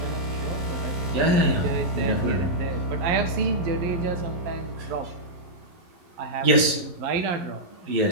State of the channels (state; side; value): late; left; 11 ms